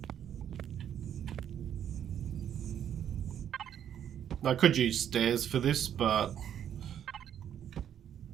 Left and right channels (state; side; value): quieter; left; 9.6 dB